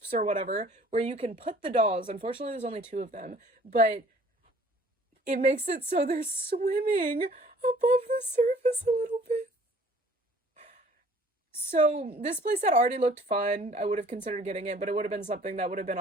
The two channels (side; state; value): both; normal; correlation 0.54